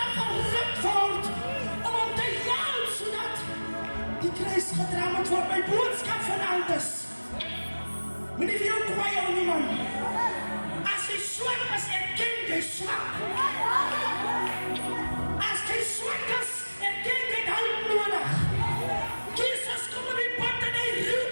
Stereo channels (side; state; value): both; inverted; correlation -1.00